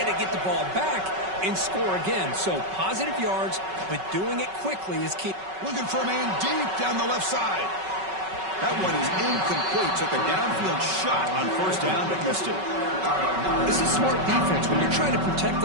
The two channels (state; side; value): late; left; 5.3 ms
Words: to get the ball back and score again. So positive yards, but doing it quickly is key. Looking for a man deep down the left side. That one is incomplete. Took a downfield shot on 1st down, but missed it. This is smart defense. When you're trying to protect